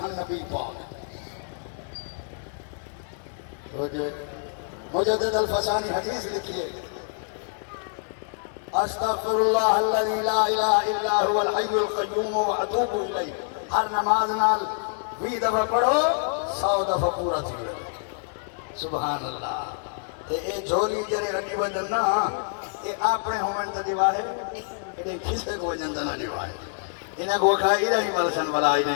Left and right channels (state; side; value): silent; right; 61 dB below the other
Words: نبی پاک مجدد الفسانی حدیث لکھیے استغفر اللہ الذی لا الہ الا هو الحی القیوم واتوب الیہ ہر نماز نال 20 دفعہ پڑھو 100 دفعہ پورا تھی سبحان اللہ تے اے جھولی جڑے رڈی وجن نا اے اپنے ہومن تے دیواہے اے کسے کو وجن تے نہ دیواہے انہاں کو کھائی رہی ملسن ولا